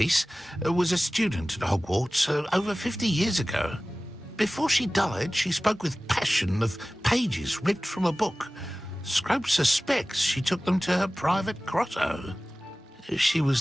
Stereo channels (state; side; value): normal; both; correlation 0.97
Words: was a student at Hogwarts over 50 years ago. Before she died, she spoke with passion of pages ripped from a book. Scrope suspects she took them to her private grotto. She was